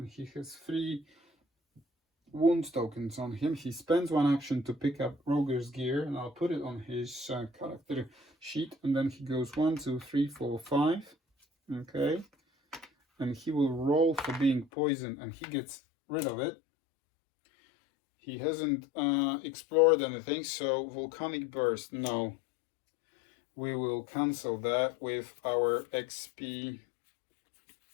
he has 3 wound tokens on him. He spends 1 action to pick up Roger's gear, and I'll put it on his character sheet, and then he goes 1, 2, 3, 4, 5. Okay, and he will roll for being poisoned, and he gets rid of it. He hasn't explored anything, so volcanic burst, no. We will cancel that with our XP.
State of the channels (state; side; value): drops out; right; at 14.7 s